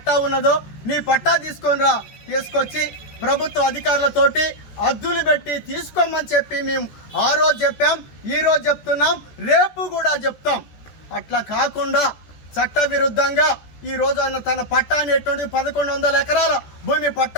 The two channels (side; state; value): right; late; 14 ms